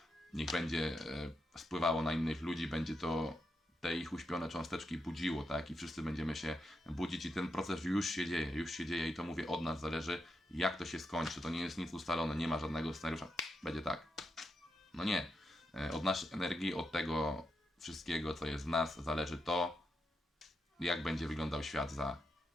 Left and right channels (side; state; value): both; normal; correlation 0.84